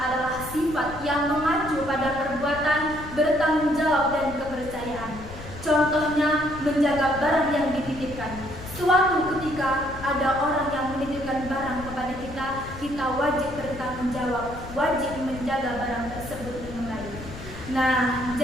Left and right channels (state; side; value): noise; left; rumble, 13 dB below the sound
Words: sifat yang mengacu pada perbuatan, bertanggung jawab, dan kepercayaan. Contohnya, menjaga barang yang dititipkan. Suatu ketika ada orang yang menitipkan barang kepada kita, kita wajib bertanggung jawab, wajib menjaga barang tersebut dengan baik. Nah,